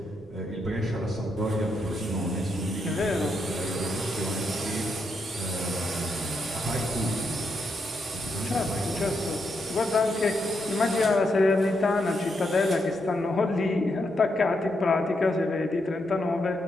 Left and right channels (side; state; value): both; normal; correlation 0.81